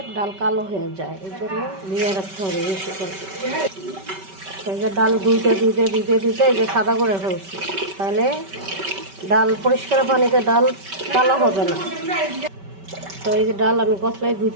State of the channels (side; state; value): left; late; 5.2 ms